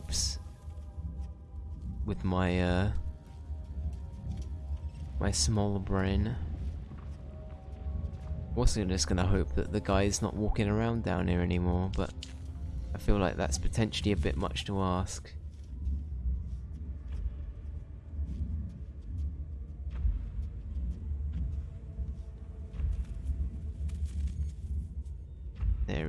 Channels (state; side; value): identical; both; correlation 1.00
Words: with my my small brain. Also just gonna hope that the guy's not walking around down here anymore, but I feel like that's potentially a bit much to ask. There